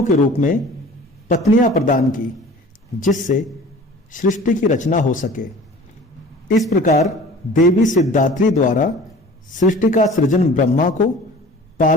के रूप में पत्नियां प्रदान की, जिससे सृष्टि की रचना हो सके। इस प्रकार देवी सिद्धात्री द्वारा सृष्टि का सृजन ब्रह्मा को,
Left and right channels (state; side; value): normal; both; correlation 0.44